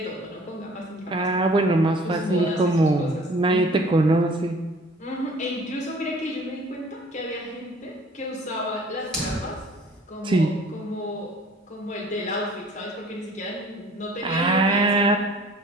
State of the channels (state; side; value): normal; both; correlation 0.52